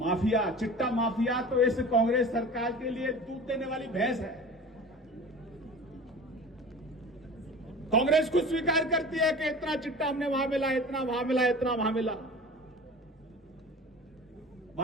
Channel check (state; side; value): normal; both; correlation 0.38